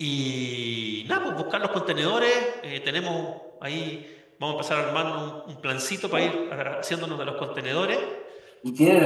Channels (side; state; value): both; identical; correlation 1.00